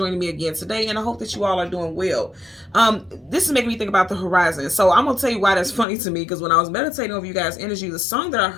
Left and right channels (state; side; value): drops out; right; at 5.9 s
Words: me again today. And I hope that you all are doing well. This is making me think about the horizon. So I'm going to tell you why that's funny to me, because when I was meditating over you guys' energy, the song that I